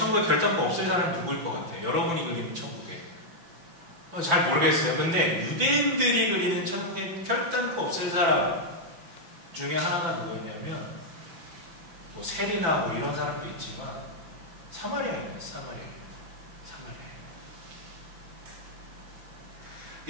결단코 없을 사람이 누구일 것 같아요? 여러분이 그리는 천국에. 잘 모르겠어요. 근데 유대인들이 그리는 천국에 결단코 없을 사람 중에 하나가 누구였냐면 뭐 세리나 뭐 이런 사람도 있지만 사마리아인이에요. 사마리아.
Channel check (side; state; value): left; late; 5.9 ms